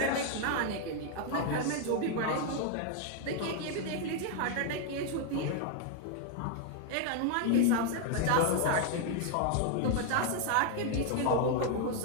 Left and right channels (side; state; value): both; different; correlation 0.00